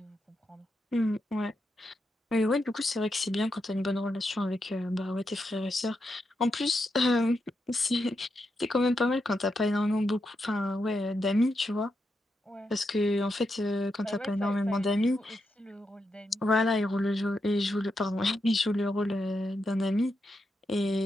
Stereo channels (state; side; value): normal; both; correlation 0.84